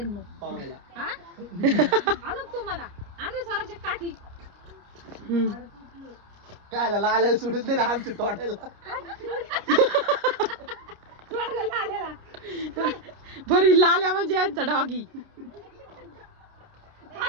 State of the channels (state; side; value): late; left; 29 ms